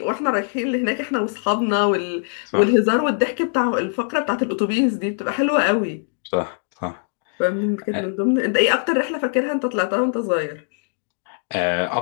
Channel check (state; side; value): silent; right; digital silence